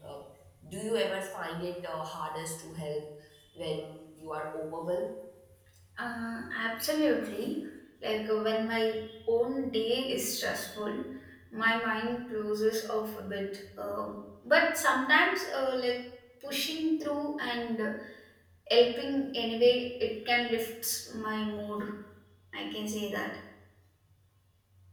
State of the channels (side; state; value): both; identical; correlation 1.00